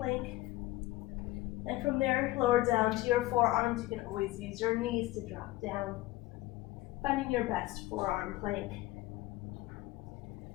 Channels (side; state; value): right; quieter; 18.1 dB